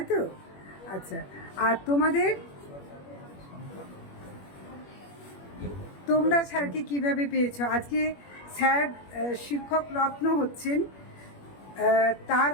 তো? আচ্ছা, আর তোমরা স্যারকে কিভাবে পেয়েছো? আজকে স্যার শিক্ষক রত্ন হচ্ছেন, তার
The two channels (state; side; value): late; right; 21 ms